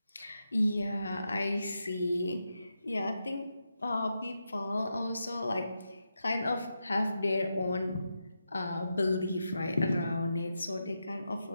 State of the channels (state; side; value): inverted; both; correlation -0.87